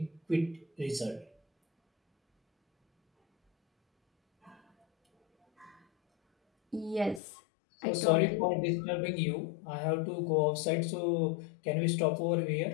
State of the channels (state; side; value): drops out; right; at 7.2 s